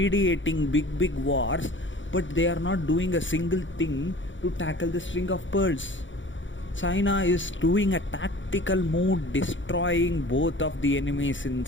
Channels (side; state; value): right; late; 0.55 ms